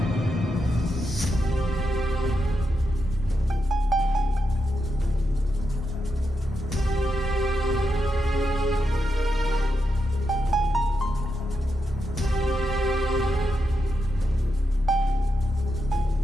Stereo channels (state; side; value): normal; both; correlation 0.85